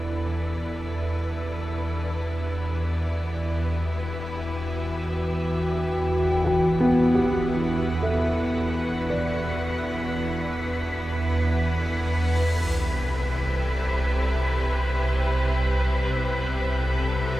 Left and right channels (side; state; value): both; normal; correlation 0.94